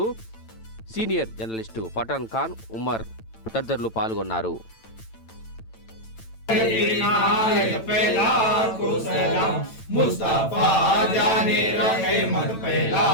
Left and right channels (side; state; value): right; late; 9.0 ms